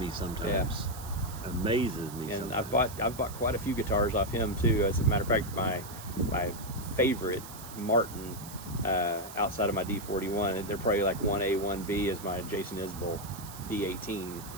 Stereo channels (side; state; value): right; noise; hiss, 14 dB below the sound